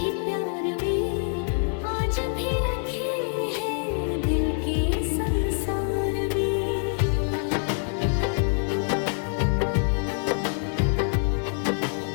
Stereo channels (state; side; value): silent; right; 56 dB below the other